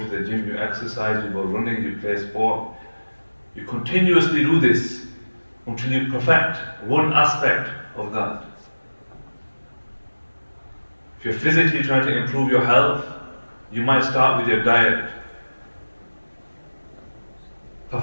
the gym, you exercise, you go running, you play sport. You continuously do this until you perfect one aspect of that. If you're physically trying to improve your health, you might start with your diet.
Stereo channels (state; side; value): inverted; both; correlation -1.00